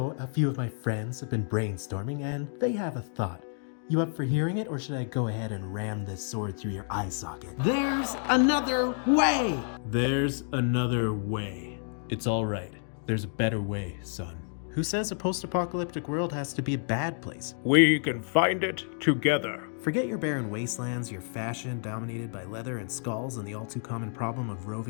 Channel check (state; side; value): silent; right; 58 dB below the other